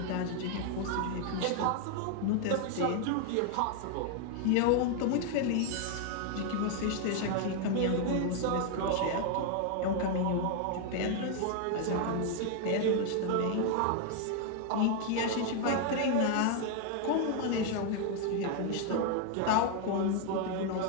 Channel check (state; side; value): different; both; correlation 0.00